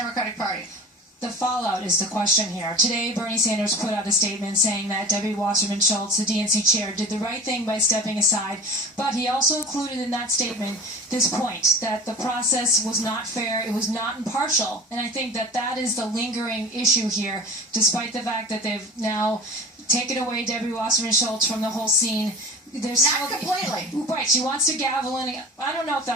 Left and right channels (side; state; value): both; normal; correlation 0.37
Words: Party? The fallout is the question here. Today, Bernie Sanders put out a statement saying that Debbie Wasserman Shultz, the DNC chair, did the right thing by stepping aside, but he also included in that statement this point, that the process was not fair, it was not impartial, and I think that that is the lingering issue here, despite the fact that they've now taken away Debbie Wasserman Shultz from the whole scene. There's not completely. Right, she wants to gavel in. I don't know if